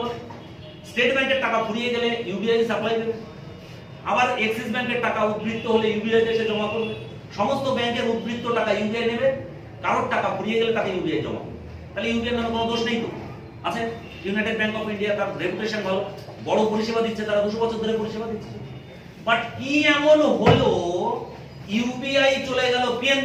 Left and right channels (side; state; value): both; identical; correlation 1.00